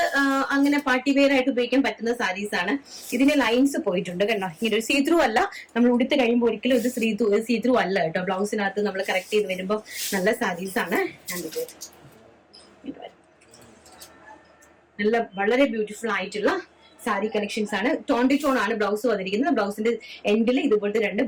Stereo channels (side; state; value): both; identical; correlation 1.00